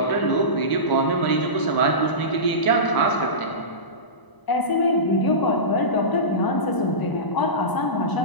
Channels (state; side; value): late; right; 1.0 ms